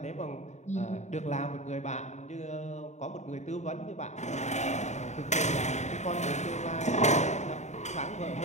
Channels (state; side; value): late; right; 0.34 ms